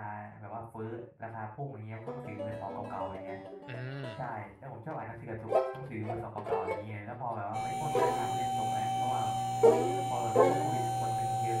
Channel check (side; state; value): both; identical; correlation 1.00